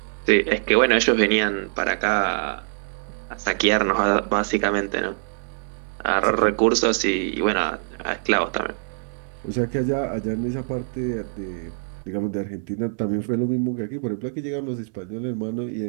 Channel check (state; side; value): silent; left; 63 dB below the other